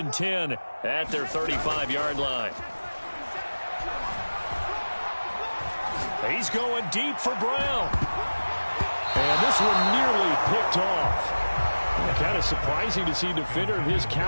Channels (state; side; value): inverted; both; correlation -1.00